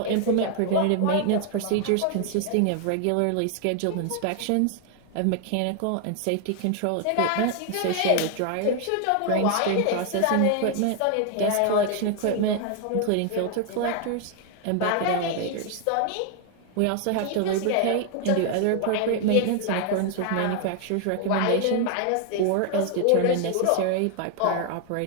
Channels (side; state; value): both; different; correlation 0.00